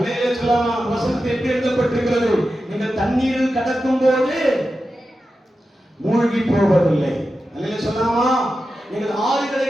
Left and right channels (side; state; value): both; normal; correlation 0.91